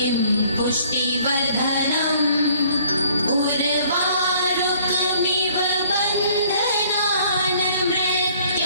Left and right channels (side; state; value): both; inverted; correlation -0.59